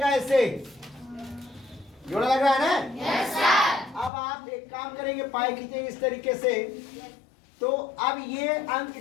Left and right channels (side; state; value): right; drops out; at 4.1 s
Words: ऐसे जोड़ा लग रहा है ना? Yes sir. अब आप एक काम करेंगे, पाई खींचेंगे इस तरीके से। तो अब ये अंक,